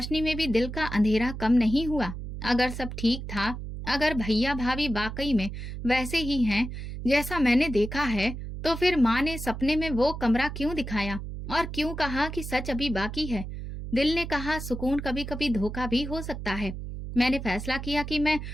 में भी दिल का अंधेरा कम नहीं हुआ। अगर सब ठीक था, अगर भैया भाभी वाकई में वैसे ही हैं जैसा मैंने देखा है, तो फिर माँ ने सपने में वो कमरा क्यों दिखाया और क्यों कहा कि सच अभी बाकी है? दिल ने कहा सुकून कभी कभी धोखा भी हो सकता है। मैंने फैसला किया कि मैं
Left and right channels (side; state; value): right; noise; hum, 8 dB below the sound